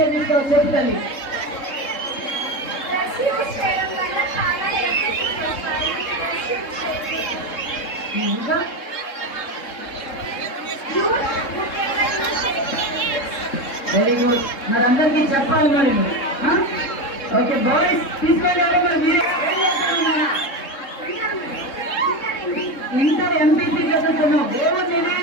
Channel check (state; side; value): late; right; 3.7 ms